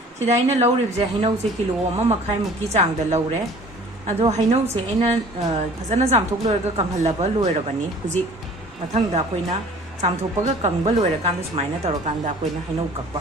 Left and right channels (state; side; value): normal; both; correlation 0.48